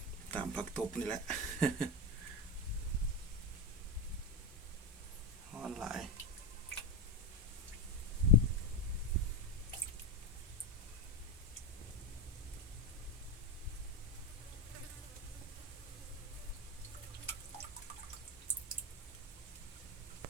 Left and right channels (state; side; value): normal; both; correlation 0.14